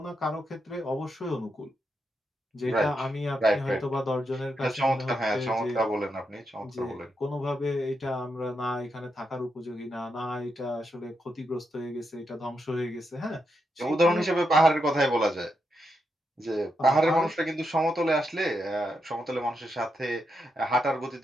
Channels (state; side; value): normal; both; correlation 0.83